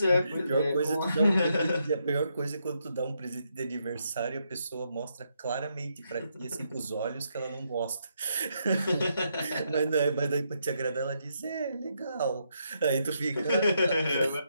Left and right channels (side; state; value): both; inverted; correlation -0.78